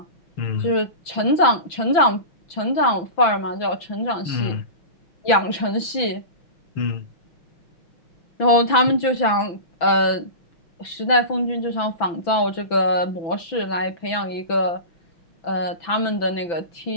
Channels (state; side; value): late; right; 6.0 ms